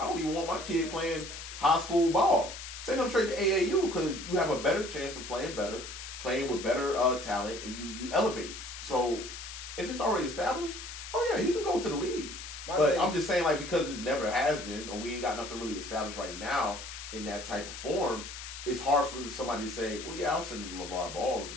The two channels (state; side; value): noise; left; hiss, 10 dB below the sound